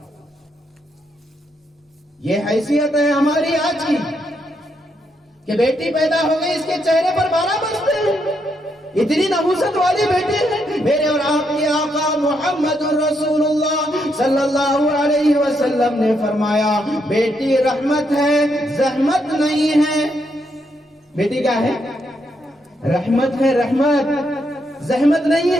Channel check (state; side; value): normal; both; correlation 0.78